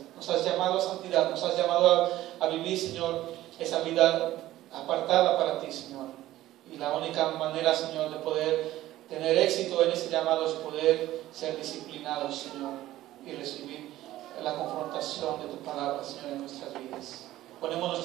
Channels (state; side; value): quieter; left; 15.0 dB